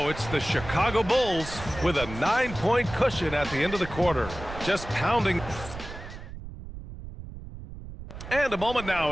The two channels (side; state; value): right; noise; rumble, 12 dB below the sound